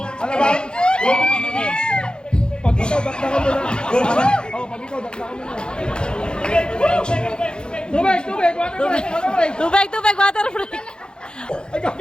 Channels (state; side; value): late; right; 0.049 ms